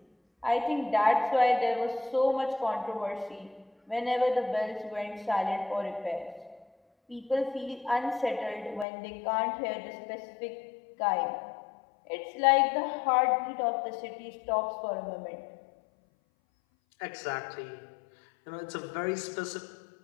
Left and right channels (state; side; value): drops out; right; at 8.8 s